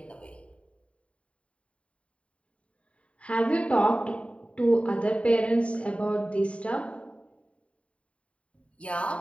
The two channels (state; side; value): late; right; 0.062 ms